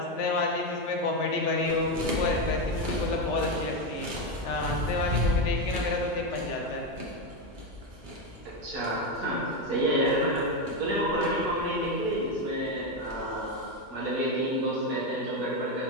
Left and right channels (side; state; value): both; normal; correlation 0.10